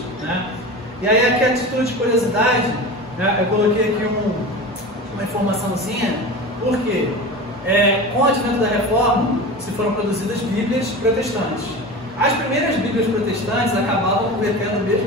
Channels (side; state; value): both; normal; correlation 0.30